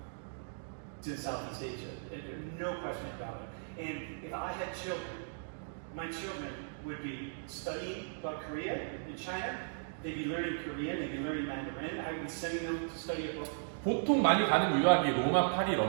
in Southeast Asia. No question about it. And if I had children, my children would be studying about Korea and China. They'd be learning Korean, they'd be learning Mandarin. I would be sending them to study abroad. 보통 많이 가는 유학이 로마, 파리,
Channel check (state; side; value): silent; left; digital silence